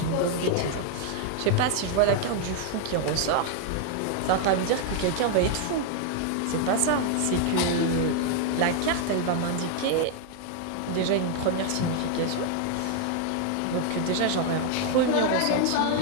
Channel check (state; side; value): different; both; correlation 0.00